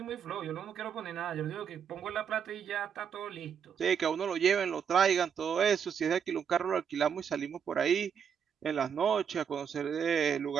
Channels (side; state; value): left; quieter; 7.5 dB